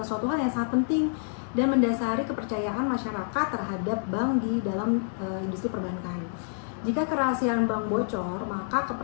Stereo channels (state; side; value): silent; right; digital silence